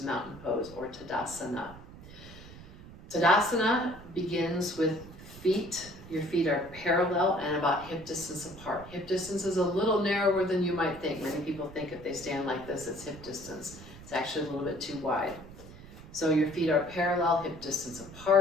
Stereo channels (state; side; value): noise; right; rumble, 17 dB below the sound